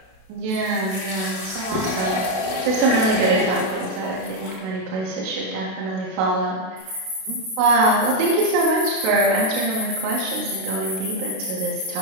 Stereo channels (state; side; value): late; left; 32 ms